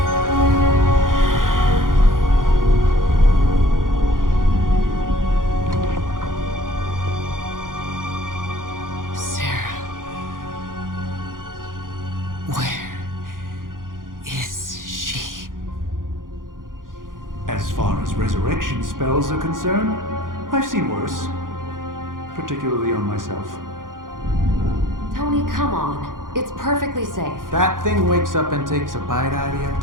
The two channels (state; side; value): late; left; 0.90 ms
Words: Sarah. Where is she? As far as resurrection spells are concerned, I've seen worse. Particularly on myself. Tony, come on. It's perfectly safe. That thing wakes up and takes a bite out of you.